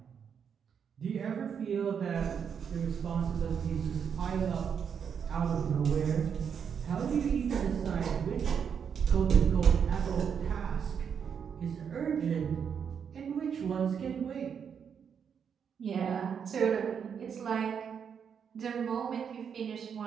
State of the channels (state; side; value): quieter; left; 7.3 dB